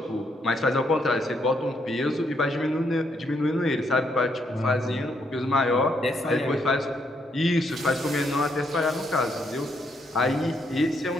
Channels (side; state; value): both; normal; correlation 0.75